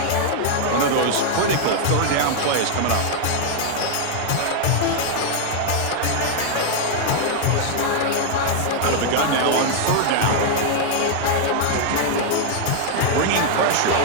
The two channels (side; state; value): both; different; correlation 0.00